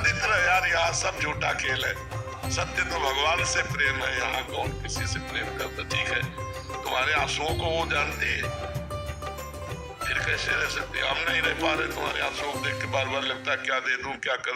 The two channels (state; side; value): identical; both; correlation 1.00